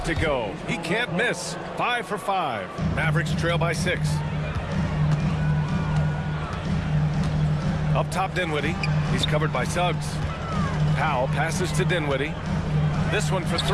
to go. He can't miss. 5 for 5. Mavericks trail by 6. Up top, Dinwiddie. He's covered by Suggs. Powell passes to Dinwiddie. This one for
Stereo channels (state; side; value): identical; both; correlation 1.00